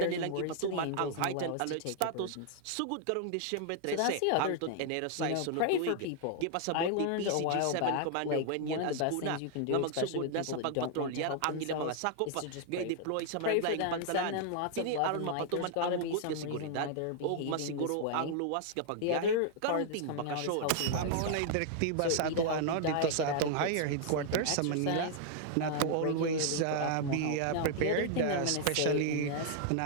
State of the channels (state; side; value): different; both; correlation -0.01